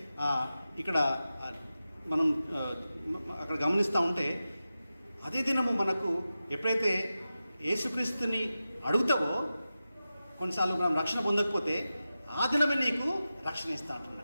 ఇక్కడ మనం అక్కడ గమనిస్తూ ఉంటే అదే దినము మనకు ఎప్పుడైతే యేసుక్రీస్తుని అడుగుతావో, కొన్నిసార్లు మనం రక్షణ పొందకపోతే ఆ దినమే నీకు రక్షణ ఇస్తా అంటున్నాడు.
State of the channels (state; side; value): inverted; both; correlation -0.93